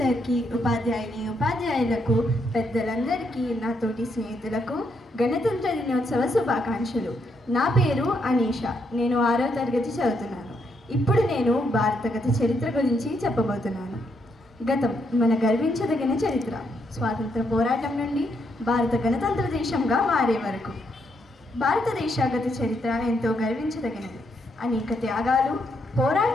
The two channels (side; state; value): both; normal; correlation 0.77